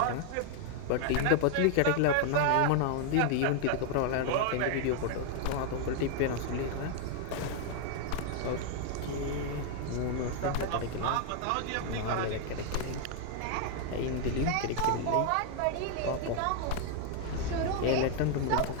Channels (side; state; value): both; different; correlation 0.00